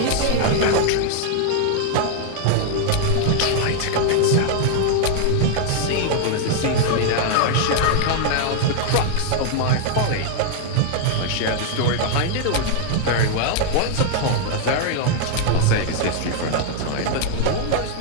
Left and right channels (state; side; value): different; both; correlation 0.00